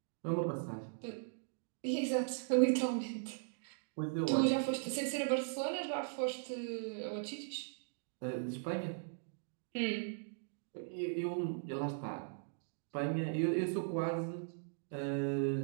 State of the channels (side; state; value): left; silent; digital silence